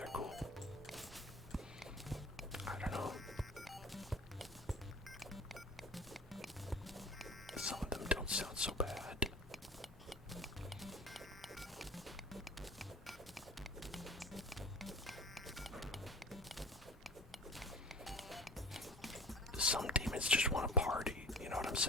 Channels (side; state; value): both; normal; correlation 0.40